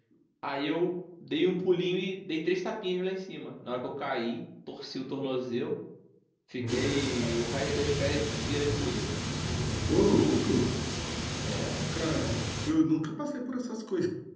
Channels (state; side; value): identical; both; correlation 1.00